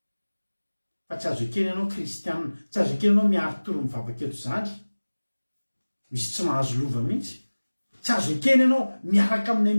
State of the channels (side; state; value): both; inverted; correlation -1.00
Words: fa tsy azo ekeny ianao kristianina tsy azo ekeny ianao miarotoro mivavaka eto zany misy tsy mahazo lova mihitsy tsy azo ekeny ianao miaraka aminay